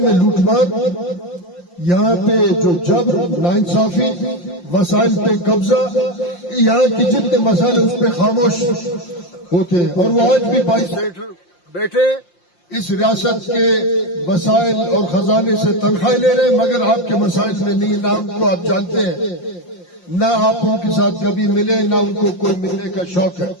میں لوٹ مار، یہاں پہ جو جبر، ناانصافی، وسائل پہ قبضہ، یہاں کی جتنے مسائل اس پہ خاموش ہوتے ہیں، اور وہ آج بھی 22 سینیٹر بیٹھے اس ریاست کے وسائل اور خزانے سے تنخواہ لے رہے ہیں، مگر آپ کے مسائل میں نہیں، نہ ان کو آپ جانتے ہیں، نہ آپ ان کے ساتھ کبھی ملے، نہ ان کو کوئی ملنے کا شوق ہے۔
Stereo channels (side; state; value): right; late; 5.7 ms